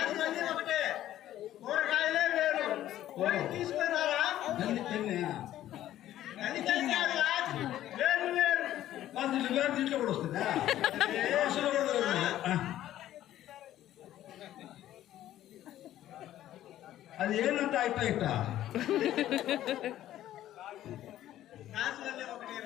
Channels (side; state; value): right; quieter; 13.0 dB